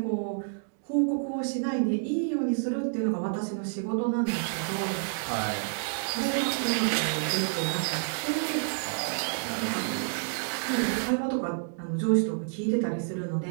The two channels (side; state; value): left; silent; digital silence